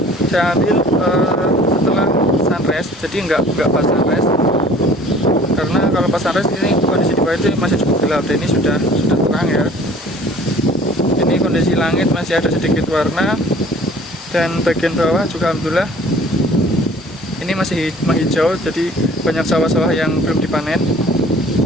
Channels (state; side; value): normal; both; correlation 0.50